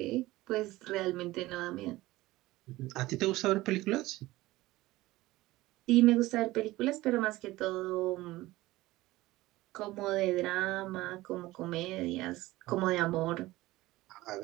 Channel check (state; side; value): quieter; left; 18.3 dB